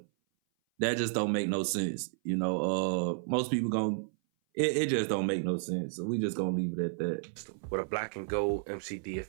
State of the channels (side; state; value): left; silent; 56 dB below the other